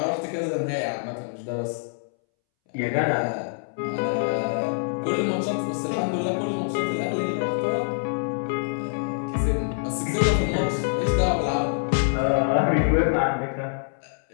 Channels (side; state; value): right; silent; 62 dB below the other